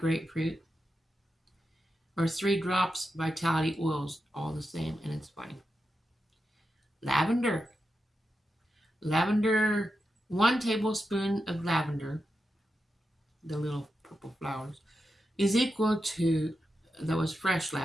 or 3 drops vitality oils, all the same, and it's fine. Lavender. 1 tablespoon of lavender, the little purple flowers, is equal to, that was fresh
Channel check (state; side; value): normal; both; correlation 0.88